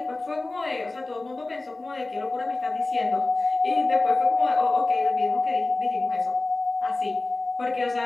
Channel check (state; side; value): quieter; right; 3.1 dB